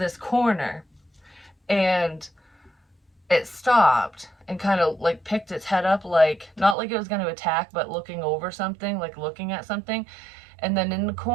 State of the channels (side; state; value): left; drops out; at 6.8 s